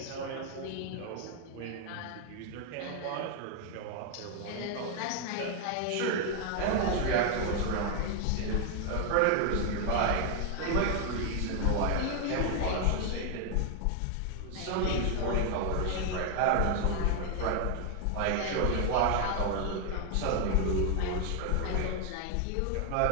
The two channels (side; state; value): both; different; correlation 0.00